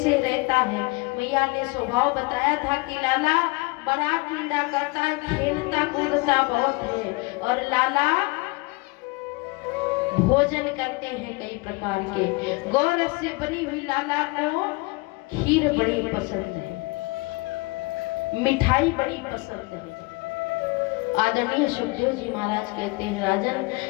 रहता है? मैया ने स्वभाव बताया था कि लाला बड़ा क्रीड़ा करता है, खेलता कूदता बहुत है और लाला भोजन करते हैं कई प्रकार के। गौरस से बनी हुई लाला को खीर बड़ी पसंद है, मिठाई बड़ी पसंद है। आदरणीय सुखदेव जी महाराज कहते हैं राजन,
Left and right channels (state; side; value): quieter; right; 25.9 dB